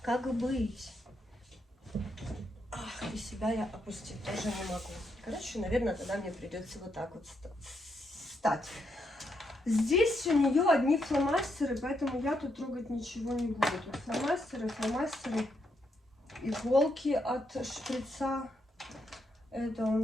Как быть? Ах, и себя я опустить тоже не могу. Короче, наверное, тогда мне придется вот так вот встать. Здесь у нее одни фломастеры, поэтому я тут трогать ничего не буду. Тут фломастеры, иголки от шприца. Это у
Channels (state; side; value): normal; both; correlation 0.79